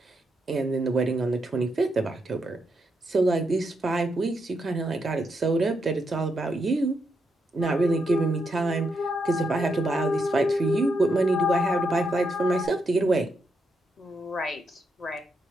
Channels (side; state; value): both; normal; correlation 0.81